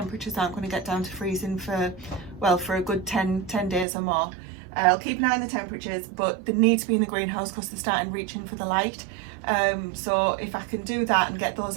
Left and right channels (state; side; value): drops out; left; at 3.9 s